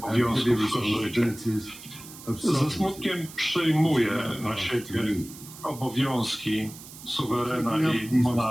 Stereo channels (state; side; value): noise; right; hiss, 16 dB below the sound